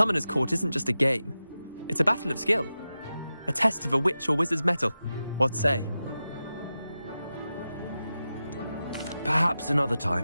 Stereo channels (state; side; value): inverted; both; correlation -0.92